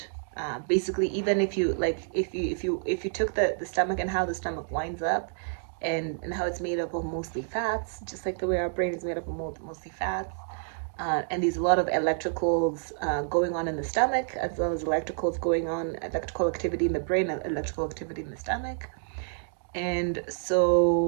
basically, even if you like, if you took the stomach and how the stomach winds up, and how it's made up of mostly fats, just like the way our brain is made up of mostly fats. And there's a lot of electricals going on in the stomach, as well as electrical activity in the brain, and electrical activity in the stomach. And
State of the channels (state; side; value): silent; left; digital silence